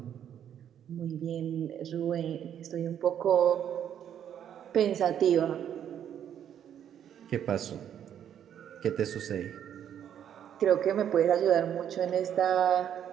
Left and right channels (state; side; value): quieter; left; 9.5 dB